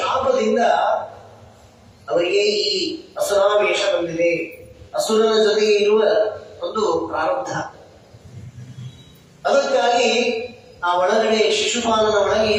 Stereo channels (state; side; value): identical; both; correlation 1.00